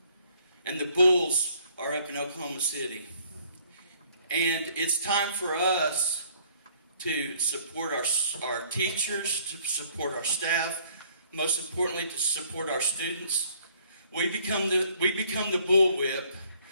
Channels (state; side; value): inverted; both; correlation -0.61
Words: And the bulls are up in Oklahoma City. And it's time for us to support our teachers, to support our staff, most importantly, to support our students. We become the bullwhip,